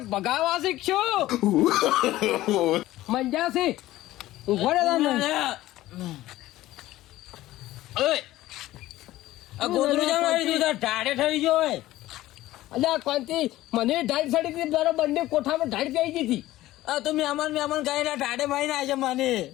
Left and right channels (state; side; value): quieter; right; 15.9 dB